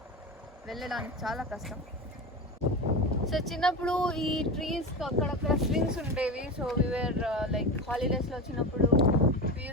వెళ్ళడానికి చాలా కష్టం. సో చిన్నప్పుడు ఈ ట్రీస్ అక్కడక్కడ స్వింగ్స్ ఉండేవి. సో వీఆర్ లైక్ హాలిడేస్లో వచ్చినప్పుడు we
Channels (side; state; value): both; normal; correlation 0.24